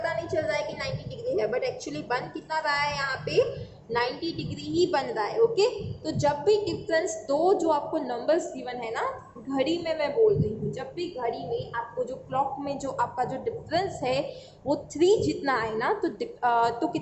नहीं चल रहा है कि 90 डिग्री है, बट एक्चुअली बन कितना रहा है यहाँ पे, 90 डिग्री ही बन रहा है, ओके। तो जब भी डिफरेंस दो जो आपको नंबर्स गिवन है ना, घड़ी में मैं बोल रही हूँ, जब भी घड़ी में आपको जो क्लॉक में जो आपका जो डिफरेंस है वो 3 जितना है ना, तो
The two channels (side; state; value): both; identical; correlation 1.00